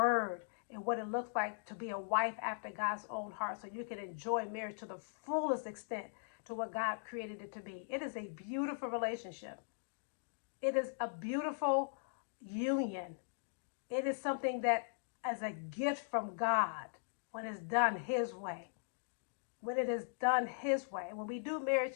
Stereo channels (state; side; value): silent; right; digital silence